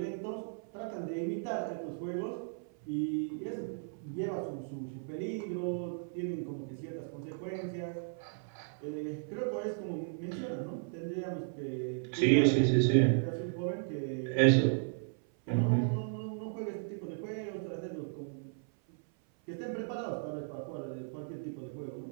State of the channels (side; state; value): left; silent; 54 dB below the other